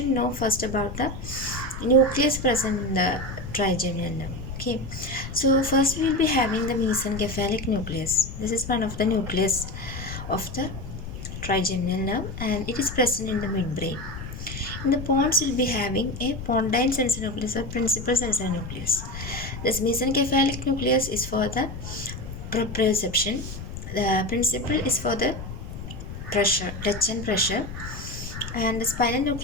know first about the nucleus present in the trigeminal nerve. Okay. So first we will be having the mesencephalic nucleus. This is one of the nucleus of the trigeminal nerve and it is present in the midbrain. In the pons, will be having a pontine sensory nucleus or principal sensory nucleus. This mesencephalic nucleus is for the proprioception. The principal is for the pressure, touch and pressure. And the spinal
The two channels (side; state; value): left; noise; rumble, 9 dB below the sound